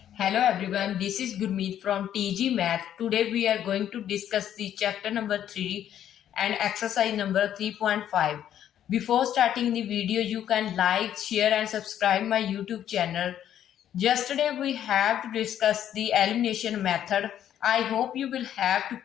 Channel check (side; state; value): right; quieter; 10.5 dB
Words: Hello everyone, this is Gurmeet from TG Math. Today we are going to discuss the chapter number 3 and exercise number 3.5. Before starting the video, you can like, share and subscribe my YouTube channel. Yesterday we have to discuss the elimination method. I hope you will have to